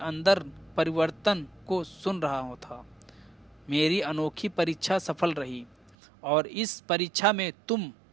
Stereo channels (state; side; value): drops out; left; at 6.0 s